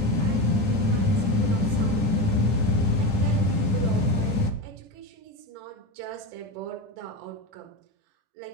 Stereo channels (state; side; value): late; left; 9.9 ms